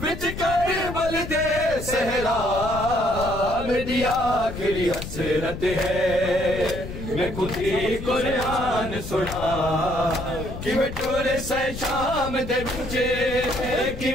وچ کربل دے صحرا میری آخری حسرت ہے میں خود ہی قرآن سنا کیویں ٹورے سے شام دے وچے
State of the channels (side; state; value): left; noise; rumble, 8 dB below the sound